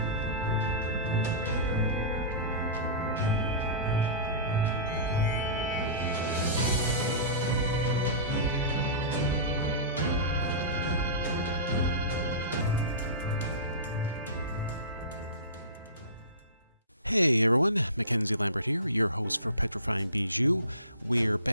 Hey everyone, Mackenzie Lambert here, your host for Petrifying Bijou. We're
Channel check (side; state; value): both; inverted; correlation -0.31